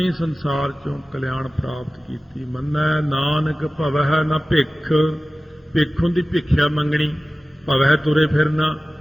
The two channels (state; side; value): normal; both; correlation 0.97